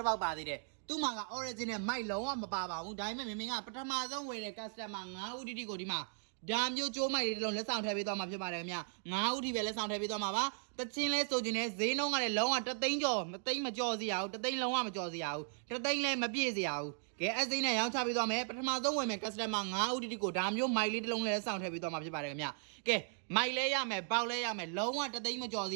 စ်ပေါက်ပါသေးတယ်သူ့မှာက original mic လုံးဝမပါပါဘူးဒါပေမဲ့မင်းကပထမဆုံးဝယ်တဲ့ customer 9ဦးတိတိကိုဒီမှာဒါမျိုးကြိုးမိုက်လေးတစ်လုံးလက်ဆောင်ထည့်ပေးသွားမှာဖြစ်ပါတယ်ခင်ဗျ9ဦးထိပဲလက်ဆောင်ထည့်ပေးသွားမှာပါတချင်းလဲဆိုခြင်းနဲ့ဈေးနှုန်းကလည်းလုံးဝ3သိန်းကျော်မသိန်းမကျော်စီရဘူး3သိန်းလုံးဝမကျော်စီရဘူး3သိန်းလည်းမပြည့်စီရဘူးကဲအစိမ်းနဲ့ရောင်းချပေးသွားမယ်ပထမဆုံးဝယ်မယ် customer 9ဦးတိတိကိုဒါမျိုးမိုက်လေးတစ်လုံးလက်ဆောင်ထည့်ပေးသွားမှာဖြစ်ပါတယ်ခင်ဗျကဲမိုက်လဲရမယ်ပေါက်လဲရမယ်လုံးဝ3သိန်းမကျော်စ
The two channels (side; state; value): left; silent; 53 dB below the other